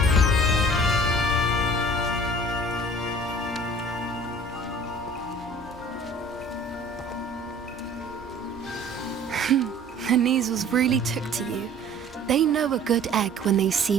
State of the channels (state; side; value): normal; both; correlation 0.49